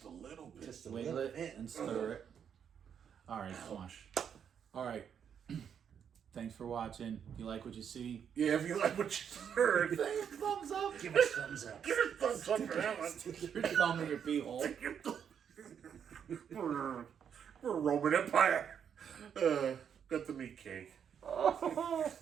a little bit. Just a wiggle little it, bit. and stir it. All right, come on. All right. Thanks for watching. If you like what you see, Yeah, if you like what you heard, give it a thumbs up. Give us thumbs up. give it a thumbs up for that one. Stick your thumb in your pee hole. We're Roman Empire. Got the meat cake.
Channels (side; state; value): left; quieter; 8.0 dB